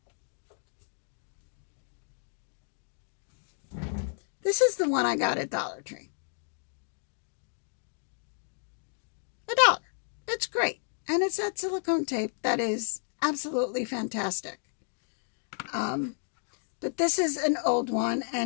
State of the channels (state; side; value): silent; right; digital silence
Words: This is the one I got at Dollar Tree. $1. It's great. And it's that silicone tape that is absolutely fantastic. But this is an old one,